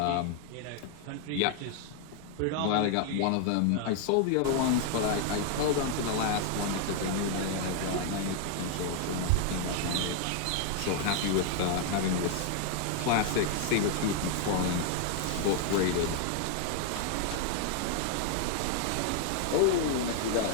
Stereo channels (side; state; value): both; different; correlation 0.00